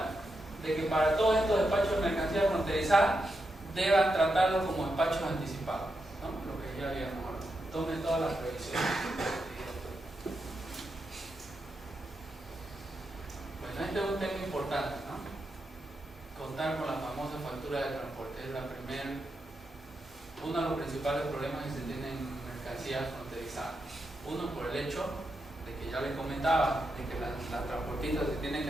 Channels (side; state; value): both; normal; correlation 0.86